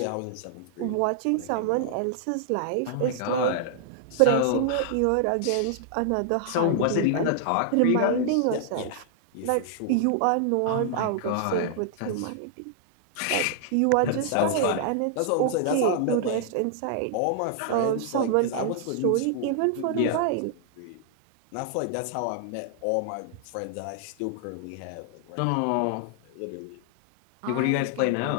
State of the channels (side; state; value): both; different; correlation -0.01